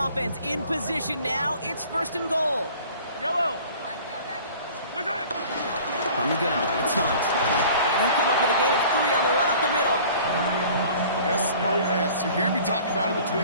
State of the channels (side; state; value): both; inverted; correlation -0.47